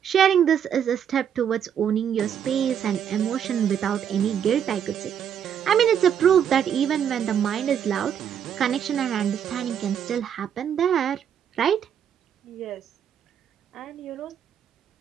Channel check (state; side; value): quieter; left; 8.7 dB